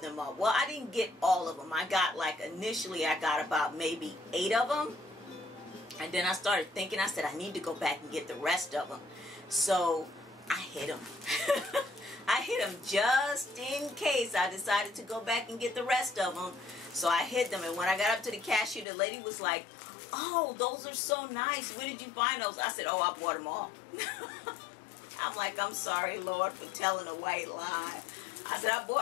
up. Well, I didn't get all of them. I got, like, initially I got about maybe 8 of them. And then I started thinking, I said, I need to go back and get the rest of them. So I hid them. I hid them just in case I decided to go back and get the rest of them. So I hid them. And when I got up to the cashier, the lady was like, oh, those are so nice. Where did you find those? I said, oh, I bought them all. I'm like, I'm sorry, Lord, for telling a white lie. I said, I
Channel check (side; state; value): right; drops out; at 18.9 s